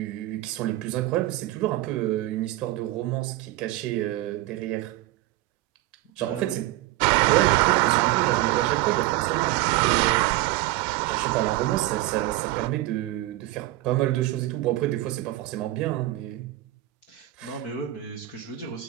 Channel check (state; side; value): quieter; left; 16.9 dB